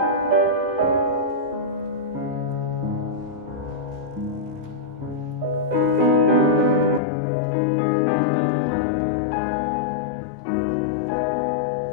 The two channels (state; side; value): drops out; right; at 7.0 s